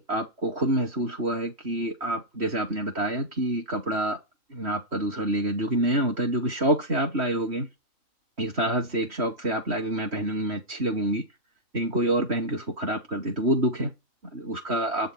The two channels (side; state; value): left; late; 3.1 ms